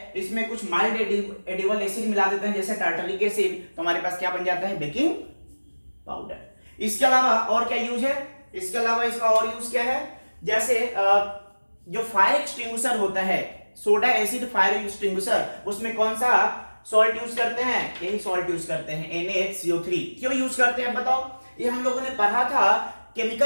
इसमें कुछ माइल्ड एडिबल एसिड मिला देते हैं, जैसे टार्टरिक एसिड, तो हमारे पास क्या बन जाता है, बेकिंग पाउडर। इसके अलावा और क्या यूज है, इसके अलावा इसका और यूज क्या है, जैसे जो फायर एक्सटिंग्विशर होता है, सोडा एसिड फायर एक्सटिंग्विशर, उसमें कौन सा सॉल्ट यूज करते हैं, यही सॉल्ट यूज करते हैं, NaHCO3। क्यों यूज करते हैं बताओ, ये हम लोगों ने पढ़ा था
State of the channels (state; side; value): inverted; both; correlation -1.00